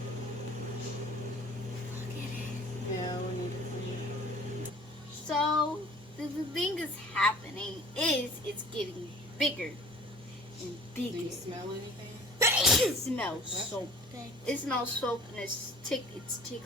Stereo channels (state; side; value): normal; both; correlation 0.48